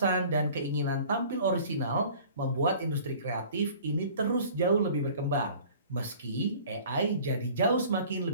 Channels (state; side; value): inverted; both; correlation -0.48